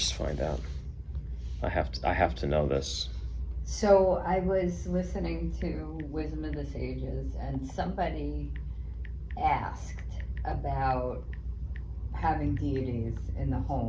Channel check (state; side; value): identical; both; correlation 1.00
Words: find out. I have to know this. So I was listening to Wisdom of the Sages, and somebody asked about having deities in the